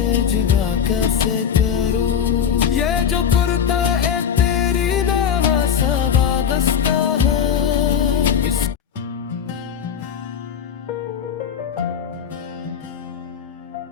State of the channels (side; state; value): right; quieter; 7.9 dB